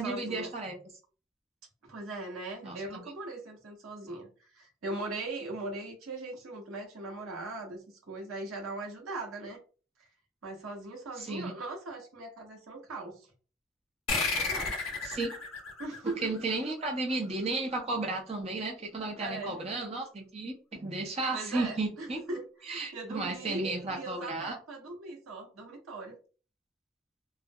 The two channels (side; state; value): both; normal; correlation 0.38